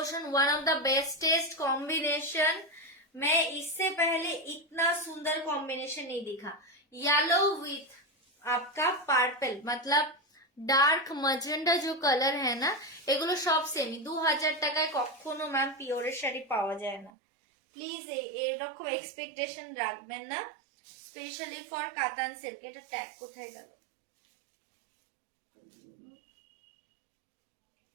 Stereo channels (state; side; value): drops out; left; at 17.1 s